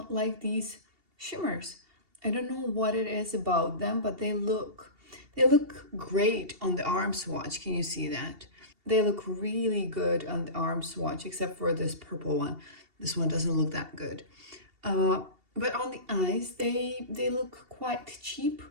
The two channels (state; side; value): late; left; 2.7 ms